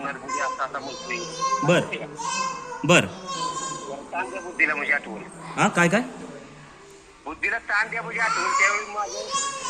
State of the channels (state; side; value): identical; both; correlation 1.00